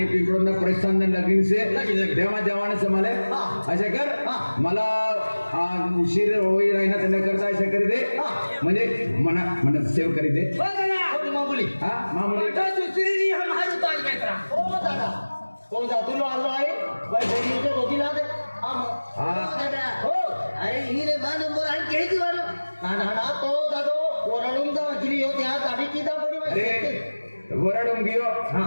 पिंपळून ना प्रस्थान लगीन से तेव्हा जवाने समाले असे कर मला उशीर होई राहिना त्यांना करता असे करी दे म्हणजे मना सेव करी दे मामुली हा मामुली हो दादा हो जा तुला आलो आहे बहिणीच्या दोघीला दे हो अरे ही रे बा नंबर आहे केली वालो ना तो दादो ओरडून जा गिरी होती आज आधी किदा पडी अरे वरडून गियो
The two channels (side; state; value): both; inverted; correlation -1.00